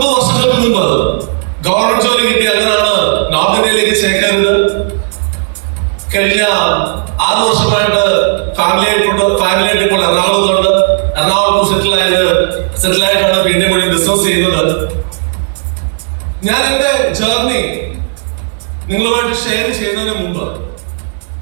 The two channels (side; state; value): left; silent; digital silence